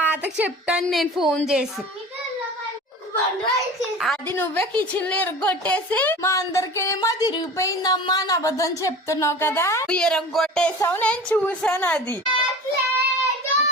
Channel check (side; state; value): both; normal; correlation 0.37